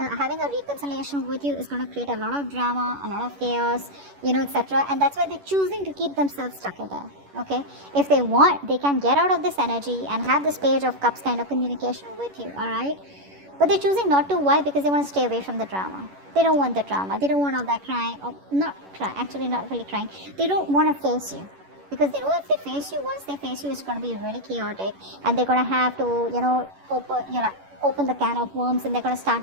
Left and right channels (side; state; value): left; late; 11 ms